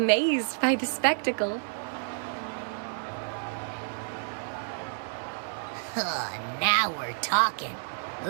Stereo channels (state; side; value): silent; left; digital silence